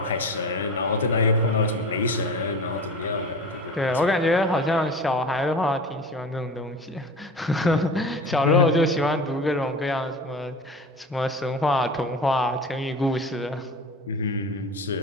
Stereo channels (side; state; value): both; normal; correlation 0.34